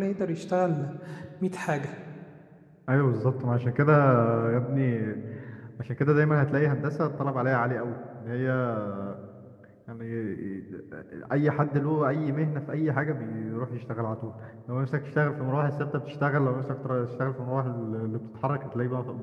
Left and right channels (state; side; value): identical; both; correlation 1.00